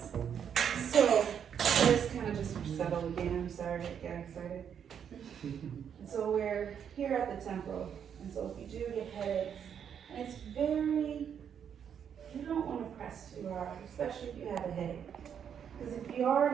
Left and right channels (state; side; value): quieter; left; 8.1 dB